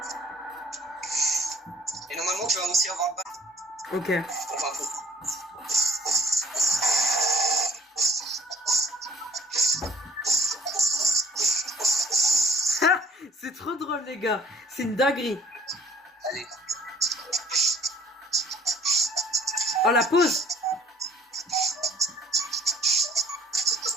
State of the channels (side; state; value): both; normal; correlation 0.56